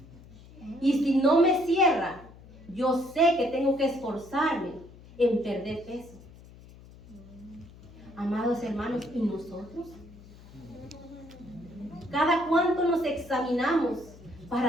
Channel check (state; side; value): noise; left; hum, 20 dB below the sound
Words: Y si no me cierra, yo sé que tengo que esforzarme en perder peso. Amados hermanos, ¿y nosotros? ¿Cada cuánto nos examinamos